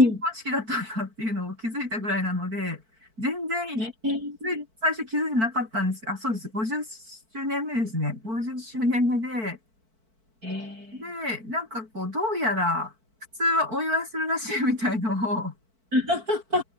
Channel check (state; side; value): late; left; 4.5 ms